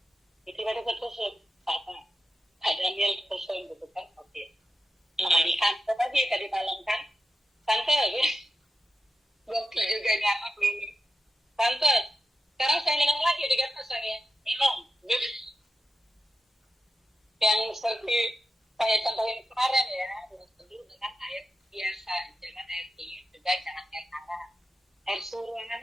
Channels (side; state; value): both; normal; correlation 0.89